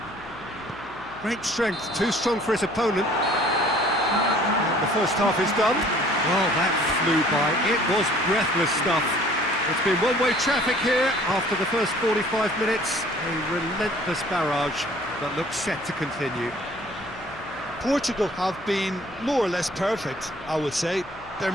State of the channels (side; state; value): left; noise; hum, 21 dB below the sound